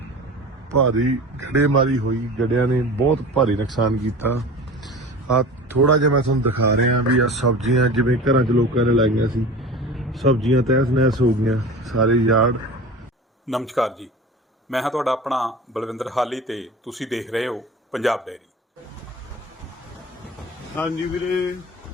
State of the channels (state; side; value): normal; both; correlation 0.36